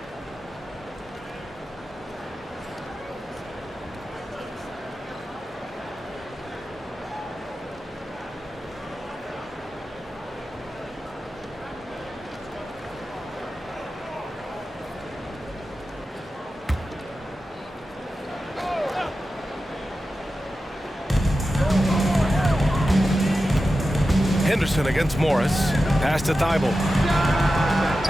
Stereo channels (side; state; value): both; normal; correlation 0.92